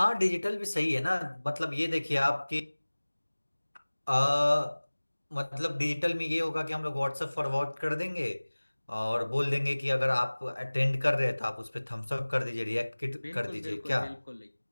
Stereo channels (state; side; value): inverted; both; correlation -1.00